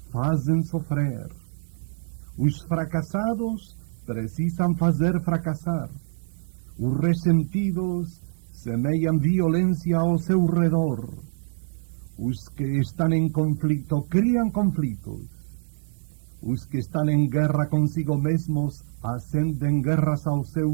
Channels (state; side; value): silent; left; digital silence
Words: fazem sofrer. Os fracassados precisam fazer fracassar. Os ressentidos semeiam violência ao seu redor. Os que estão em conflito criam conflitos. Os que estão em guerra consigo mesmos acendem guerras ao seu